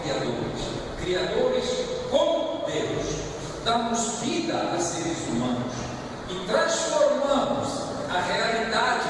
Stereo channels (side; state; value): both; identical; correlation 1.00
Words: criadores com Deus. Damos vida a seres humanos e transformamos a realidade